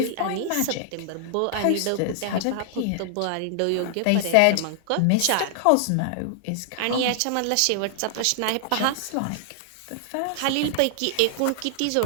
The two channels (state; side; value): different; both; correlation -0.01